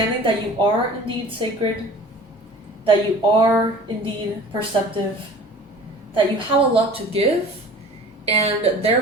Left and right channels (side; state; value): both; normal; correlation 0.43